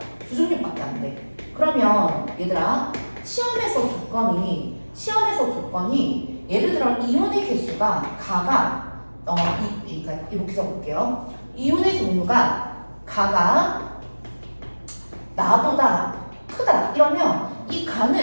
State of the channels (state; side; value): inverted; both; correlation -1.00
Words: 2종류밖에 안 돼. 그러면 얘들아 시험에서 조건이 예를 들어 이온의 개수가 가가 그러니까 이렇게 적을게요. 이온의 종류가 가가 나보다 크다 이러면 이